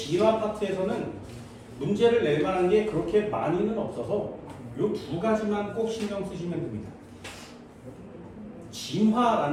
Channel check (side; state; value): both; identical; correlation 1.00